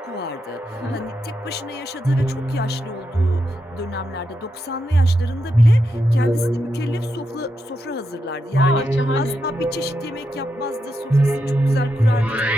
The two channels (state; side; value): normal; both; correlation 0.85